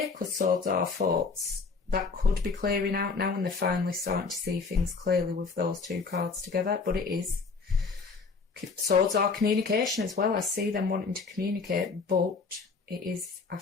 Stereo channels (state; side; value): quieter; right; 4.7 dB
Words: because swords are thoughts, that could be clearing out now, and they're finally starting to see things clearly with those two cards together. But it is. Swords are communication as well. I see them wanting to communicate, but it is